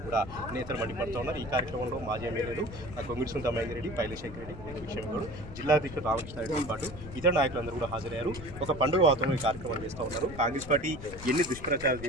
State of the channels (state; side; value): noise; left; rumble, 12 dB below the sound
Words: కూడా నేతలు మండిపడుతూ ఉన్నారు. ఈ కార్యక్రమంలో మాజీ ఎమ్మెల్యేలు కొంగిడి పింతా మహేందర్ రెడ్డి, పైలశేఖర్ రెడ్డి, విషయంలో జిల్లా అధ్యక్షుడు రామకృష్ణారెడ్డితో పాటు ఇతర నాయకులందరూ కూడా హాజరయ్యారు. ఒక పండుగ వాతావరణం ఈ కార్యక్రమం చేస్తూ ఉన్నారు. కాంగ్రెస్ పార్టీ ఎన్ని దుష్ప్రచారాలు